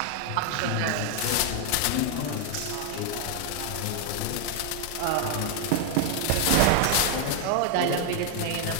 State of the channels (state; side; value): different; both; correlation 0.00